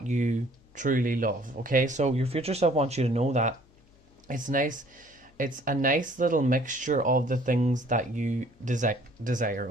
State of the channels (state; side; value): noise; left; hum, 30 dB below the sound